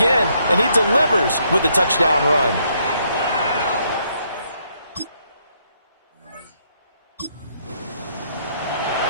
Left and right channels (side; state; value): both; inverted; correlation -0.72